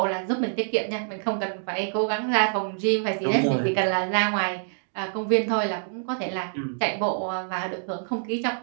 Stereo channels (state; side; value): silent; left; digital silence